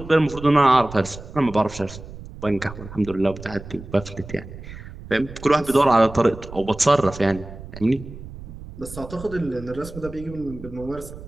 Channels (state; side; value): noise; right; rumble, 14 dB below the sound